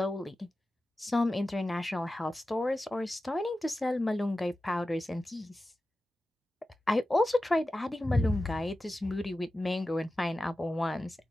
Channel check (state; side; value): normal; both; correlation 0.94